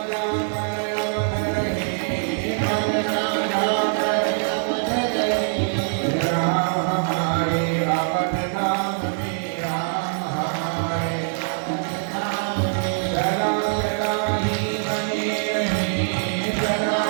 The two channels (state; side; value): silent; left; digital silence